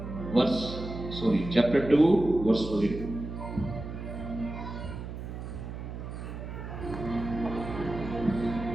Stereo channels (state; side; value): noise; right; hum, 8 dB below the sound